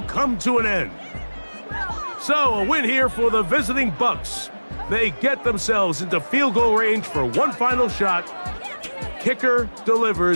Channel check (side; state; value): both; inverted; correlation -1.00